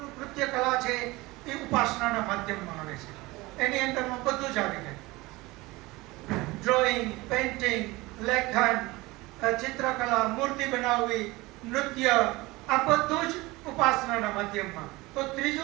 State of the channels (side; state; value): left; quieter; 21.4 dB